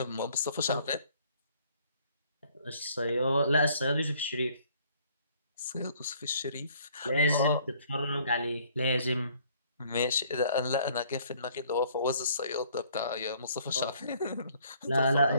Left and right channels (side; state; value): both; inverted; correlation -0.61